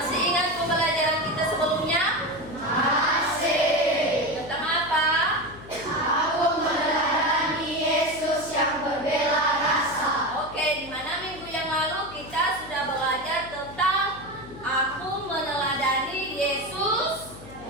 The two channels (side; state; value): left; noise; hum, 17 dB below the sound